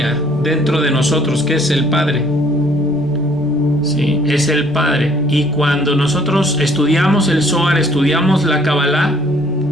dentro de nosotros, que es el Padre. Sí, es el Padre. Y cuando nosotros estudiamos el Zohar, estudiamos la Kabbalah,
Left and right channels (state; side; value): normal; both; correlation 0.60